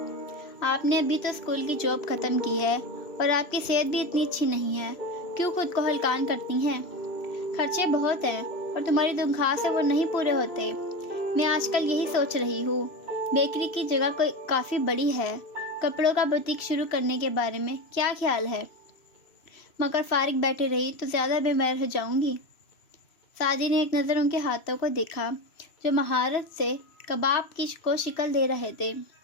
आपने अभी तो स्कूल की जॉब ख़त्म की है और आपकी सेहत भी इतनी अच्छी नहीं है, क्यों खुद को हलकान करती हैं? खर्चे बहुत हैं और तुम्हारी तनख्वाह से वो नहीं पूरे होते। मैं आजकल यही सोच रही हूँ, बेकरी की जगह कोई काफ़ी बड़ी है, कपड़ों का बुटीक शुरू करने के बारे में क्या ख्याल है? मगर फारिग बैठी रही तो ज़्यादा बीमार हो जाऊंगी। सादी ने एक नज़र उनके हाथों को देखा जो महारत से कबाब को शिकल दे रहे थे।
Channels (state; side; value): late; right; 2.7 ms